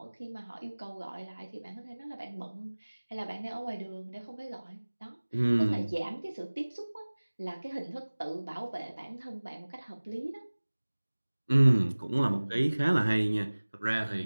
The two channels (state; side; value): inverted; both; correlation -1.00